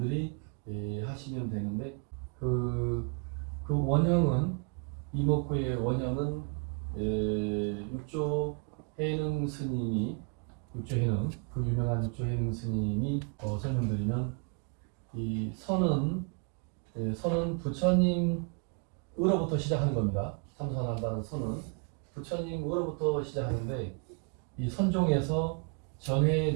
하시면 되는데 그 원형은 이먹고의 원형은 육조 해능 스님이 육조해능 그 유명한 육조해능 스님이 설명드리면 이 선은 부처님으로부터 시작하는 겁니다. 삼선한다는 선은 부처님으로부터 시작하는데 이 선종에서 전해에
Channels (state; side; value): quieter; left; 37.5 dB